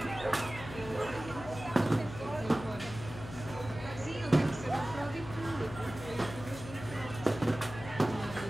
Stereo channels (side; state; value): left; noise; hum, 11 dB below the sound